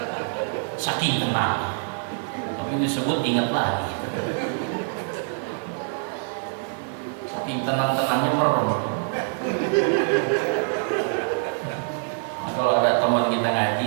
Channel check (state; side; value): silent; left; 62 dB below the other